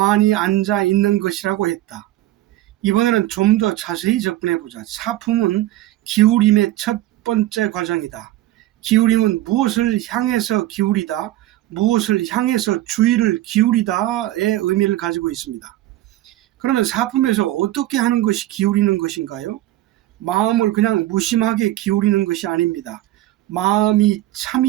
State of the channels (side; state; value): left; quieter; 15.4 dB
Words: 앉아 있는 것이라고 했다. 이번에는 좀 더 자세히 접근해보자. 사품은 기울임의 첫 번째 과정이다. 기울임은 무엇을 향해서 기울이다, 무엇을 향해서 주의를 기울이다의 의미를 가지고 있습니다. 그러면 사품에서 어떻게 하는 것이 기울이는 것인가요? 마음을 그냥 무심하게 기울이는 것이 아닙니다. 마음이